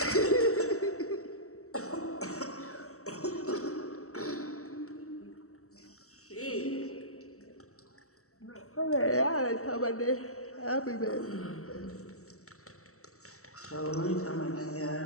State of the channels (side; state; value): right; late; 0.64 ms